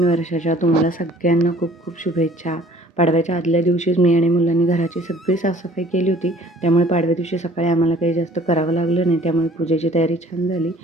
वर्षाच्या तुम्हाला सगळ्यांना खूप खूप शुभेच्छा. पाडव्याच्या आदल्या दिवशीच मी आणि मुलांनी घराची सगळी साफसफाई केली होती. त्यामुळे पाडव्या दिवशी सकाळी आम्हाला काही जास्त करावं लागलं नाही. त्यामुळे पूजेची तयारी छान झाली.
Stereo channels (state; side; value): normal; both; correlation 0.54